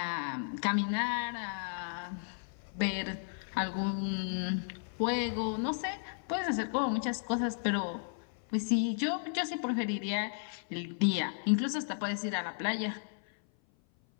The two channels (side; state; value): right; silent; 55 dB below the other